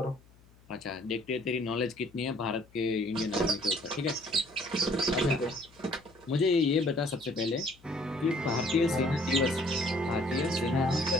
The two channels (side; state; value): left; noise; hum, 28 dB below the sound